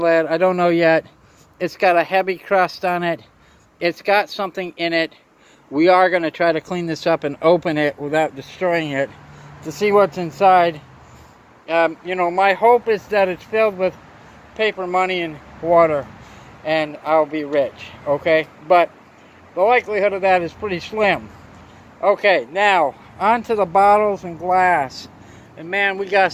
lid. I don't know yet. It's got a heavy crust on it. it's got something in it. We are going to try to clean this up and open it without destroying it to see what's inside. You know, my hope is that it's filled with paper money and water, and I'll be rich, okay? But the likelihood of that is pretty slim. Okay, now, on to the bottles and glass. And man, we got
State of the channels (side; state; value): both; identical; correlation 1.00